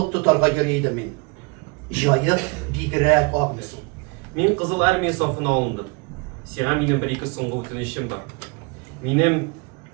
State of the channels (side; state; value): left; quieter; 30.0 dB